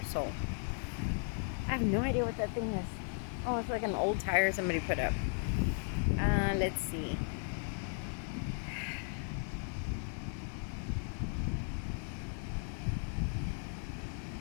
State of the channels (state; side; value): silent; right; 54 dB below the other